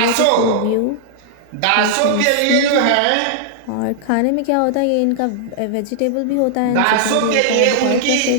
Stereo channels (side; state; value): both; different; correlation -0.01